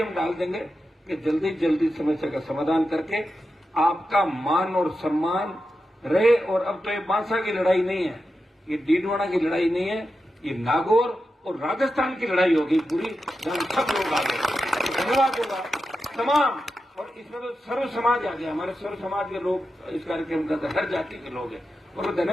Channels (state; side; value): normal; both; correlation 0.90